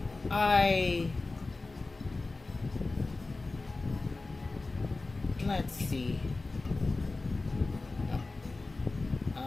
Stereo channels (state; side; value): quieter; right; 3.4 dB